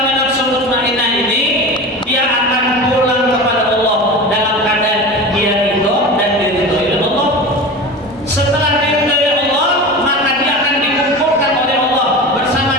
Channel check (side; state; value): both; normal; correlation 0.31